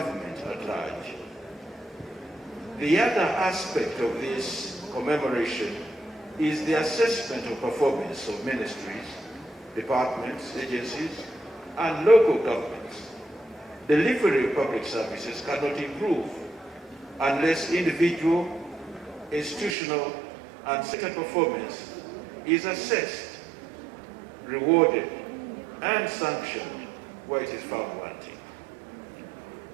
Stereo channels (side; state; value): left; drops out; at 19.8 s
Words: at large. The other aspect of this commemoration is the assessment of performance of ministries, departments, agencies, and local governments. Delivery of public services cannot improve unless individual, institutional, and sector performance is assessed, rewarded, and sanctioned where it is found wanting.